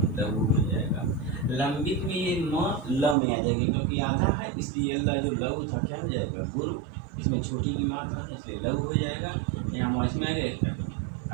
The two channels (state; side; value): drops out; left; at 3.2 s